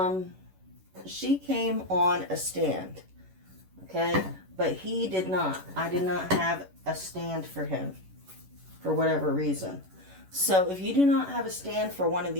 She came on a stand, okay? But he did not. I did not have a stand for him for whatever reason. So if you do not have a stand for one of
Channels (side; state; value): left; late; 11 ms